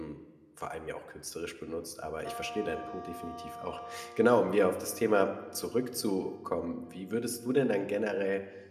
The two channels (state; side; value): identical; both; correlation 1.00